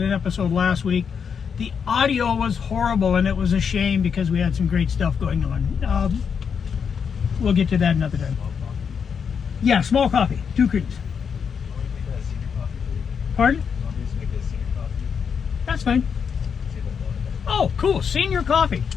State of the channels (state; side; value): quieter; right; 6.7 dB